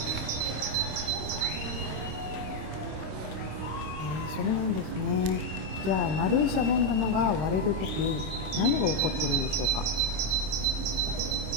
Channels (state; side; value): late; left; 26 ms